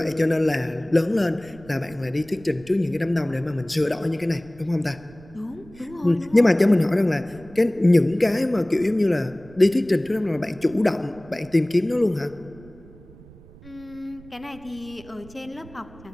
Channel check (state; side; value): noise; right; rumble, 22 dB below the sound